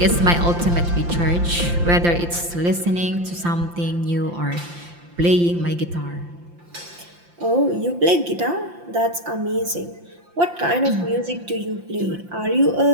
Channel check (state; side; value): late; left; 5.8 ms